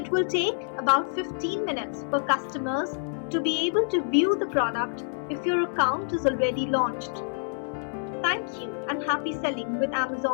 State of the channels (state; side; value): silent; right; 60 dB below the other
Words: will take about 15 minutes for customers to be able to view the product if your account is already launched. Thank you and happy selling with